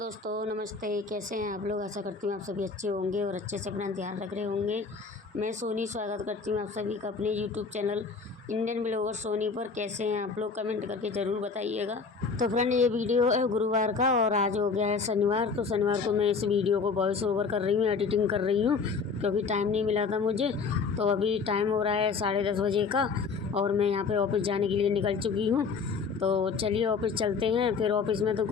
नमस्ते। कैसे हैं आप लोग? आशा करती हूँ आप सभी अच्छे होंगे और अच्छे से अपना ध्यान रख रहे होंगे। मैं सोनी स्वागत करती हूँ आप सभी का अपने YouTube channel Indian blogger Soni पर। कैसे हैं आप लोग? कमेंट करके ज़रूर बताइएगा। तो फ्रेंड, ये वीडियो है गुरुवार का और आज हो गया है शनिवार। तो शनिवार को मैं इस वीडियो को वॉइस ओवर कर रही हूँ, एडिटिंग कर रही हूँ क्योंकि टाइम नहीं मिला था मुझे। तो अभी टाइम हो रहा है 10:30 बजे का और मैं यहाँ पे ऑफिस जाने के लिए निकल चुकी हूँ। तो चलिए ऑफिस चलते हैं। फिर ऑफिस में तो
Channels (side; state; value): right; quieter; 5.0 dB